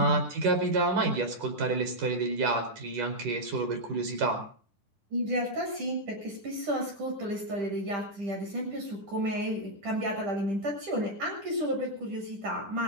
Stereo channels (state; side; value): late; left; 10 ms